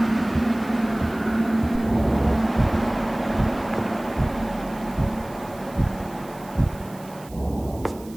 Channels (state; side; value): noise; right; hiss, 22 dB below the sound